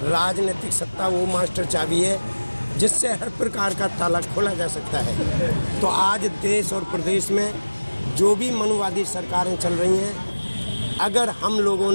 राजनीतिक सत्ता वो मास्टर चाबी है जिससे हर प्रकार का ताला खोला जा सकता है। तो आज देश और प्रदेश में जो भी मनुवादी सरकारें चल रही हैं, अगर हम लोगों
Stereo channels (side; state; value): both; inverted; correlation -1.00